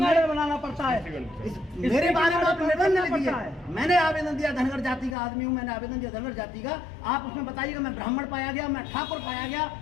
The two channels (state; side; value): drops out; right; at 5.2 s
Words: बनाना पड़ता है। मेरे बारे में आप निबंध लिख दिया है, मैंने आवेदन दिया, धनगर जाति का आदमी हूँ, मैंने आवेदन दिया धनगर जाति का। आप उसमें बताइएगा मैं ब्राह्मण पाया गया, मैं ठाकुर पाया गया,